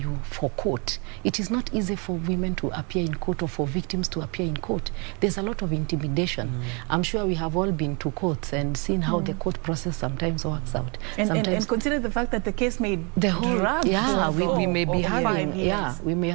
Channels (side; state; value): left; quieter; 33.1 dB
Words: for court. It is not easy for women to appear in court or for victims to appear in court. There's a lot of intimidation. I'm sure we have all been to courts and seen how the court process sometimes works out. And consider the fact that the case may drag we may be having